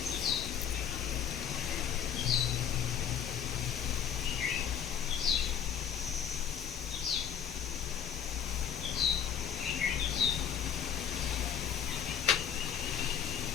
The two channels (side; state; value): right; quieter; 8.7 dB